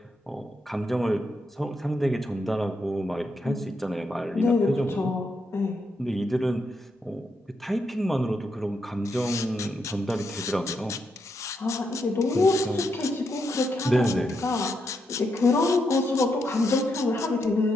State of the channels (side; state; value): both; normal; correlation 0.81